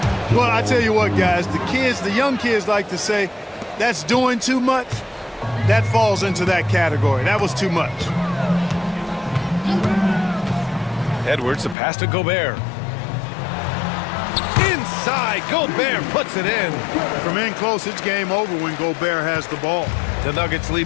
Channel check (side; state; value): right; drops out; at 11.8 s